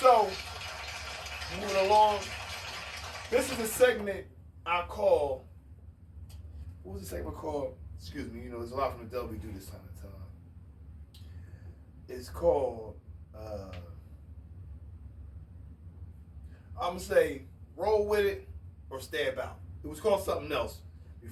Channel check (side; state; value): both; identical; correlation 1.00